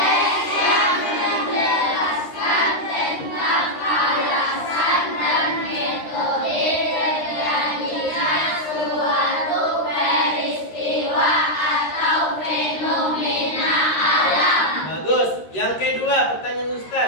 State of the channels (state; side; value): late; right; 13 ms